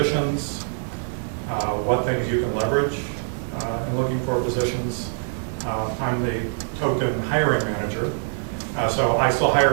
what things you can leverage in looking for positions. I'm the token hiring manager, so I still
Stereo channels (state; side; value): silent; left; 63 dB below the other